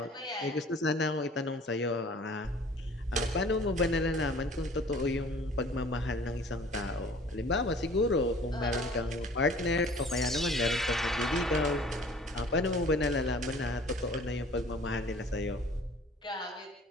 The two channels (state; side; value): normal; both; correlation 0.49